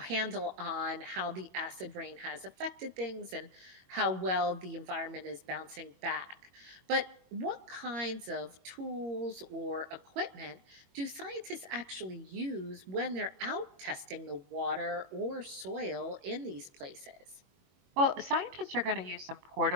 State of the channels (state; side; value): late; left; 22 ms